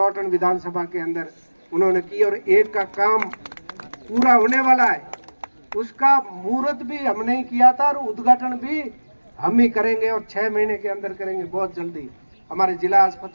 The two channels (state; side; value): inverted; both; correlation -1.00